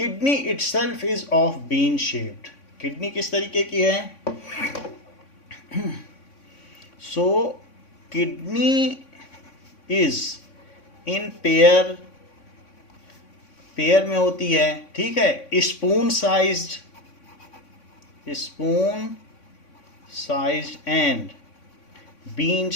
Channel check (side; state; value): right; late; 3.6 ms